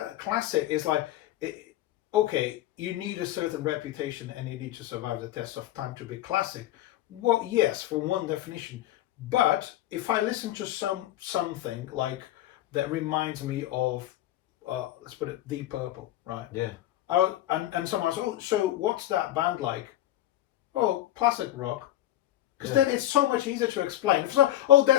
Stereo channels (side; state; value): right; quieter; 13.9 dB